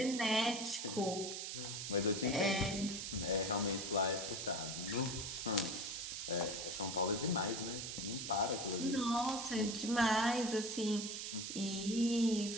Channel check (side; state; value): right; noise; hiss, 5 dB below the sound